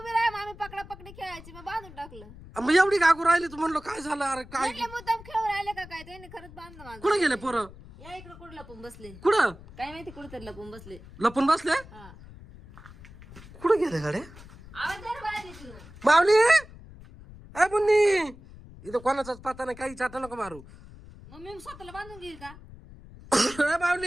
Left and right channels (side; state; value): left; noise; rumble, 18 dB below the sound